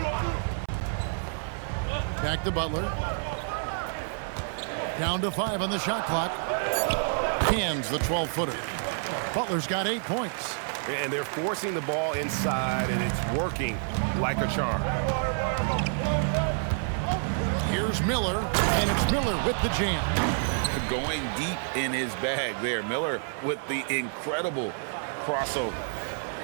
Back to Butler. Down to 5 on the shot clock. Hands the 12-footer. Butler's got 8 points. And they're forcing the ball inside, and it's working like a charm. Here's Miller, and it's Miller with the jam. Going deep in his bag there. Miller with the incredible crossover.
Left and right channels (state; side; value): silent; left; 59 dB below the other